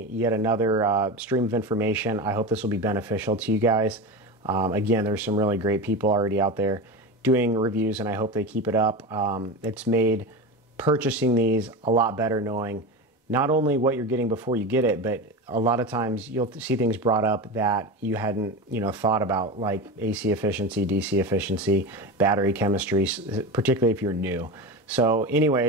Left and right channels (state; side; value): normal; both; correlation 0.24